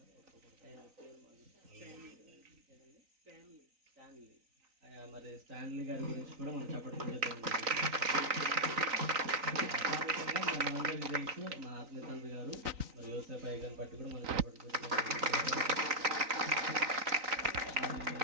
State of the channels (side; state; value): left; late; 3.9 ms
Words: మరి స్టాన్లీ గారి గురించి కూడా మనం చప్పట్లు చేద్దాం. మనందరికీ తెలుసు మా ఆత్మీయ తండ్రి గారు మరి యోసేపు అయ్య గారిని బట్టి కూడా మనం చప్పట్లు